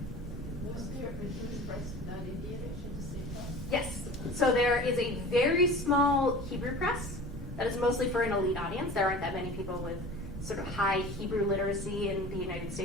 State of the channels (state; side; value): normal; both; correlation 0.38